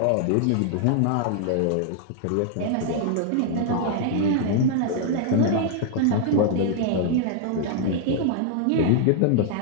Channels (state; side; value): different; both; correlation 0.00